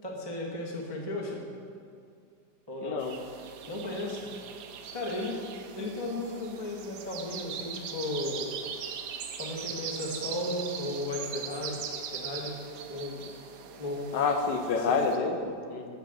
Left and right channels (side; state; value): left; late; 5.0 ms